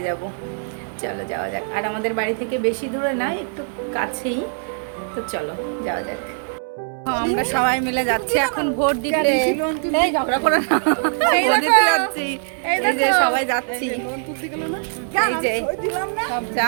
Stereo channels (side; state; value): left; silent; 64 dB below the other